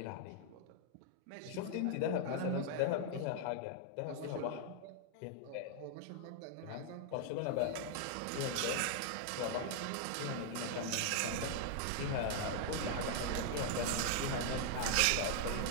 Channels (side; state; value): both; different; correlation 0.00